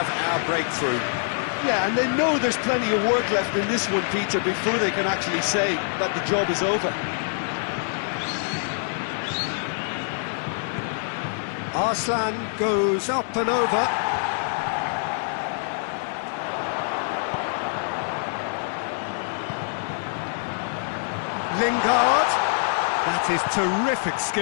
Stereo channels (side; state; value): right; silent; 62 dB below the other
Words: our breakthrough. Yeah, and they know there's plenty of work left in this one, Peter, before they can actually say that the job is over. Arslan goes up and over. Lingard. That is terrific